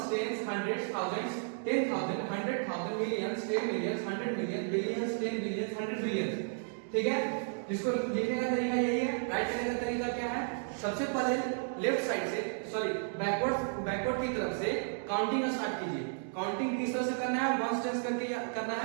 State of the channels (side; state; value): left; silent; digital silence